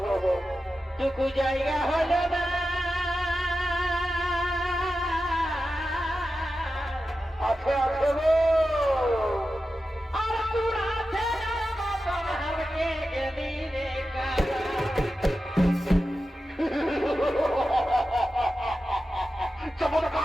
টুকু জায়গা হল না আছে গো আর তোর আছে মতন হারকে গেলি রে কারা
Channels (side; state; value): both; normal; correlation 0.92